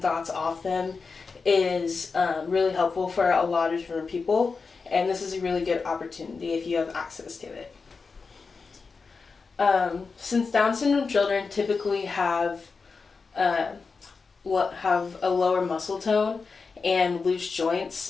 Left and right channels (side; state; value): right; quieter; 4.7 dB